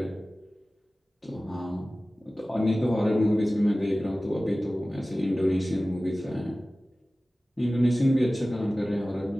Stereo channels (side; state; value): both; normal; correlation 0.97